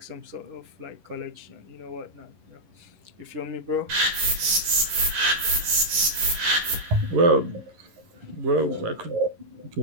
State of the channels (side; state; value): left; late; 11 ms